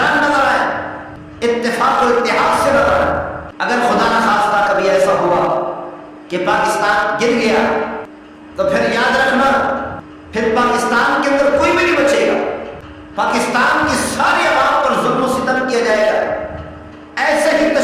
نظر آئے، اتفاق و اتحاد سے نظر آئے۔ اگر خدا نہ خواستہ کبھی ایسا ہوا کہ پاکستان گر گیا تو پھر یاد رکھنا، پھر پاکستان کے اندر کوئی بھی نہیں بچے گا۔ پاکستان کی ساری عوام پر ظلم و ستم کیا جائے گا، ایسے ہی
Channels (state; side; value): identical; both; correlation 1.00